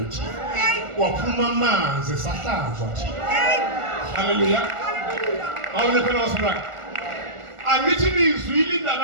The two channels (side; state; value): left; late; 1.4 ms